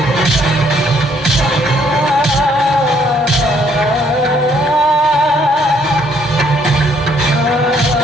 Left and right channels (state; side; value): normal; both; correlation 0.66